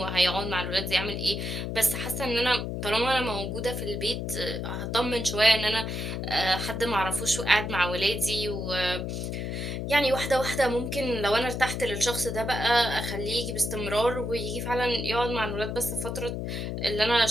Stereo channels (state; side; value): noise; left; hum, 4 dB below the sound